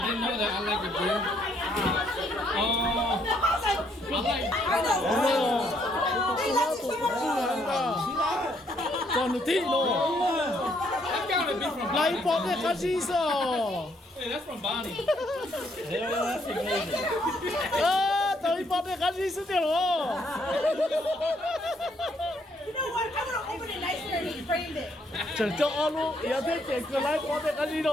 know that I like a beer. Còn tí nữa. That gotta be from Lấy Bonnie. bó cái cá gì sao? Hey, that's from Bonnie. Hell yeah, that's amazing. Tới bó cái cá gì sao được rồi? You know what? I'm gonna open it nicer and he framed it. Chẳng cho luôn. Giờ thế chỉ cứ lấy bó cái cá gì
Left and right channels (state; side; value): normal; both; correlation 0.70